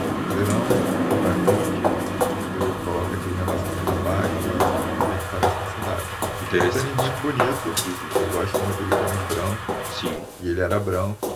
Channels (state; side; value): identical; both; correlation 1.00